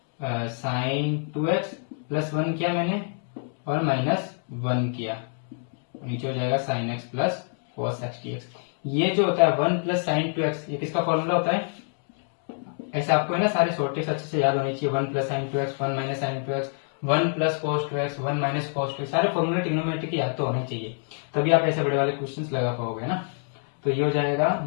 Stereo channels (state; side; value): silent; right; 59 dB below the other